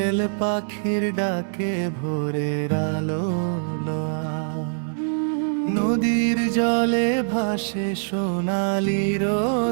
পাখির ডাকে ভোরের আলো লোয়া। নদীর জলে ভাসে সোনালি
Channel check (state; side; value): silent; left; digital silence